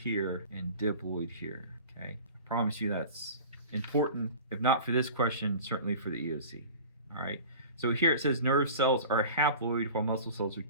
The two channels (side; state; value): both; inverted; correlation -0.39